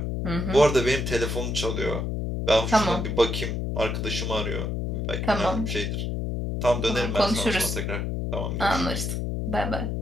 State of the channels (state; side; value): noise; left; hum, 2 dB below the sound